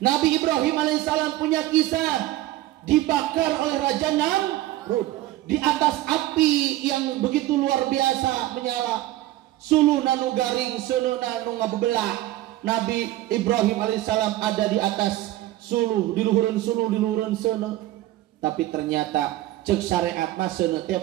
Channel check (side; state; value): left; quieter; 15.8 dB